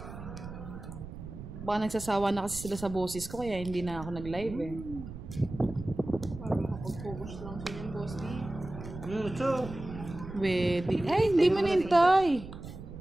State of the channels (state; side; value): noise; right; rumble, 12 dB below the sound